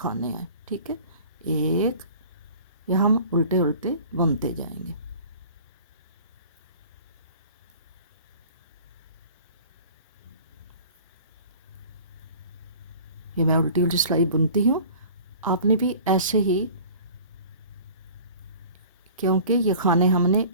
आए। ठीक है, एक या हम उल्टे उल्टे बुनते जाएंगे। ये मैं उल्टी उल्टी सिलाई बुनती हूँ, आपने भी ऐसे ही, क्योंकि ये खाने हमने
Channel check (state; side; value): inverted; both; correlation -0.45